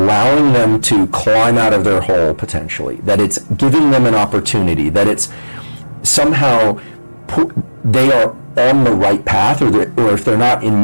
them to climb out of their hole potentially, that it's giving them an opportunity, that it's somehow they are on the right path, or if they're not in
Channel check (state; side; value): inverted; both; correlation -1.00